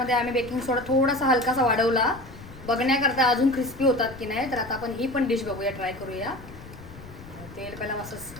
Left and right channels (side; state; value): left; noise; rumble, 17 dB below the sound